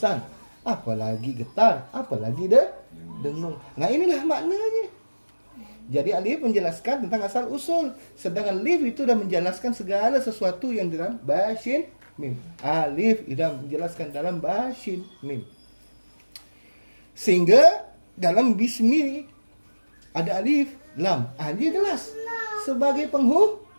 apalagi getar, apalagi dengung. Nah, inilah maknanya. Jadi alif menjelaskan tentang asal usul, sedangkan lif itu sudah menjelaskan segala sesuatu yang dalam bashin mim. Alif sudah menjelaskan dalam bashin mim. Sehingga dalam bismi ada alif, lam. Dia jelas sebagai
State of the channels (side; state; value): both; inverted; correlation -1.00